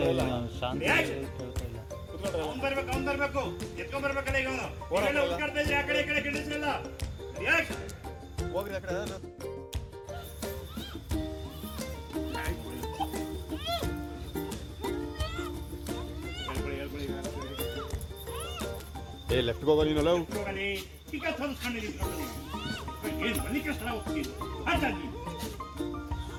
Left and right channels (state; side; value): identical; both; correlation 1.00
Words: ಅವ್ನು ಬರ್ಬೇಕು ಎತ್ಕೊಂಡ್ ಬರ್ಬೇಕಲ್ಲ ಈಗ ಅವನು ಉಳ್ಕಾಡ್ತಾ ಇದ್ರೆ ಆ ಕಡೆ ಈ ಕಡೆ ಗಿಡಿಸ್ರಲ್ಲ. ಹೋಗ್ರಿ ಆ ಕಡೆ ಏ ಲೆಫ್ಟ್ ಹೋಗೋ ನೀನಲ್ಲ ಈಗ ಏನು ಮನೆ ಕಷ್ಟ ಹೋಗ್ತೀನಿ ಹಾಗಾಗಿ